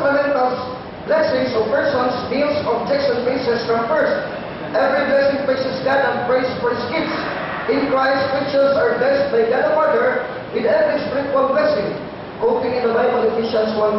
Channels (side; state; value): both; identical; correlation 1.00